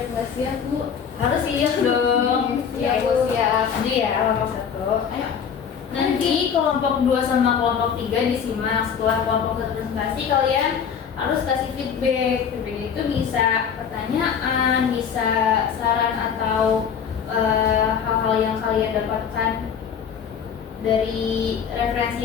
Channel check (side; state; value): right; quieter; 7.3 dB